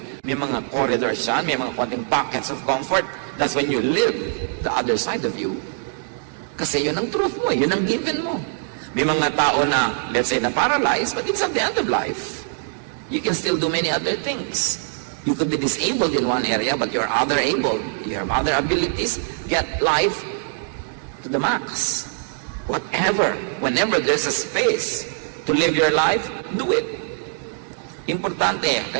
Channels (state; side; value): silent; left; digital silence